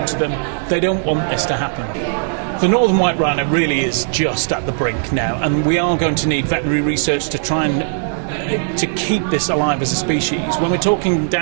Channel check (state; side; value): silent; left; digital silence